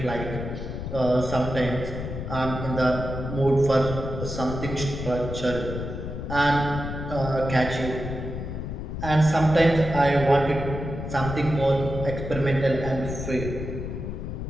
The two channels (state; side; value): noise; left; rumble, 6 dB below the sound